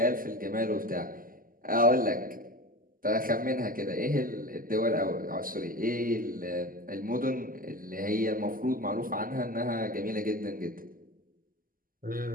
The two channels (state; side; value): late; left; 0.41 ms